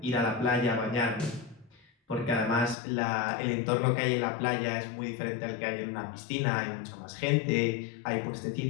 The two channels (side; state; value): right; drops out; at 2.8 s